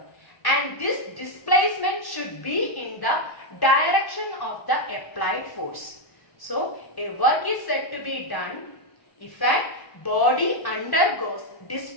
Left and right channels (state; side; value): late; right; 1.1 ms